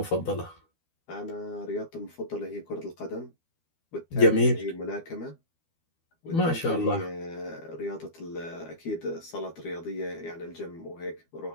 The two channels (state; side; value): late; right; 12 ms